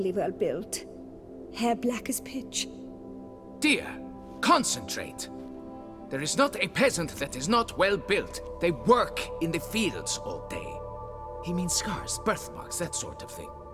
well built. Hair black as pitch. Dear, concentrate. There is not a peasant that is not well built. They work in the fields all day. He means scars, birthmarks, that sort of thing.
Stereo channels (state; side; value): identical; both; correlation 1.00